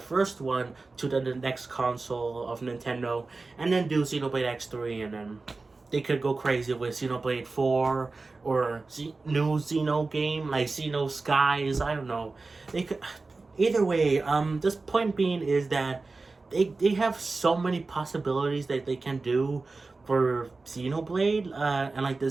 one, to the next console of Nintendo, and then do Xenoblade X3, and then they could go crazy with Xenoblade 4 or new Xeno game like Xeno Skies. I don't know. They could. Either way, this point being is that they have so many possibilities that they can do for Xenoblade and like the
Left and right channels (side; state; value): left; quieter; 3.7 dB